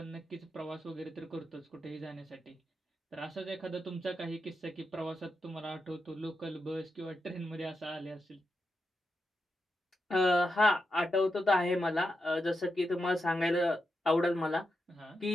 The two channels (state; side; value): normal; both; correlation 0.87